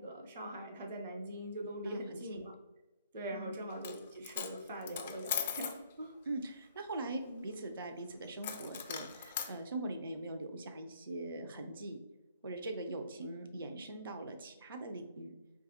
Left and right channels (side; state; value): both; inverted; correlation -0.61